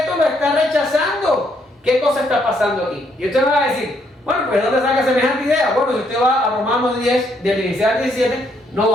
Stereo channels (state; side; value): normal; both; correlation 0.72